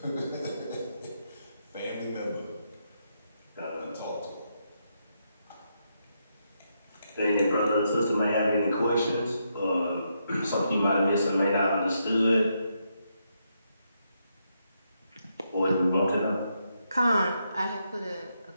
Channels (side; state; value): both; inverted; correlation -0.80